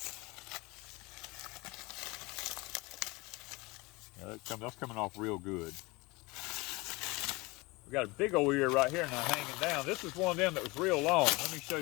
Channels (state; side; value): quieter; right; 23.9 dB